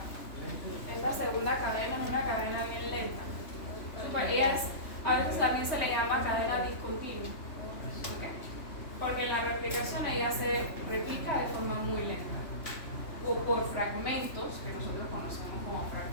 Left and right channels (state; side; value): late; right; 3.3 ms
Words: esta segunda cadena es una cadena bien lenta. A veces también se le llama cadena discontinua. ¿Okay? Porque en la replicación ella se replica de forma muy lenta. O por fragmentos, que nosotros conocemos como